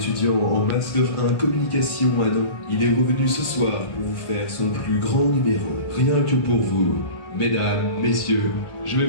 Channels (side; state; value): right; late; 1.5 ms